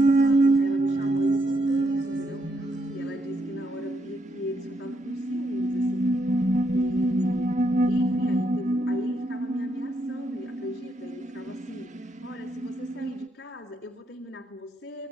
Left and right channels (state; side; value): normal; both; correlation 0.77